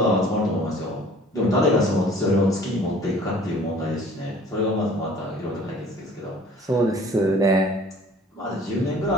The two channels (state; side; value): normal; both; correlation 0.51